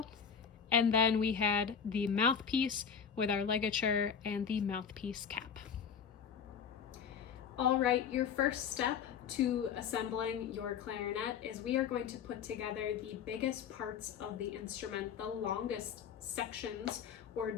and then we had the mouthpiece with our ligature and the mouthpiece cap. All right, your first step to assembling your clarinet is we are going to put together the biggest parts of the instrument, the longest sections or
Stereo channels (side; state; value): right; quieter; 7.2 dB